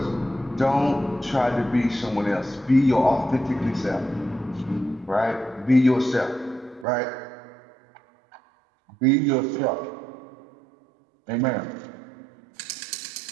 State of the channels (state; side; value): drops out; left; at 6.9 s